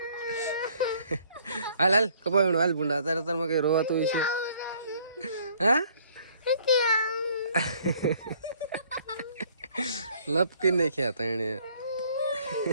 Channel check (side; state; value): both; inverted; correlation -0.61